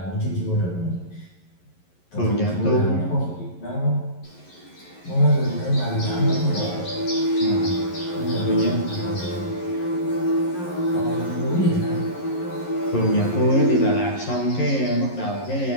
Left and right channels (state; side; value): late; right; 11 ms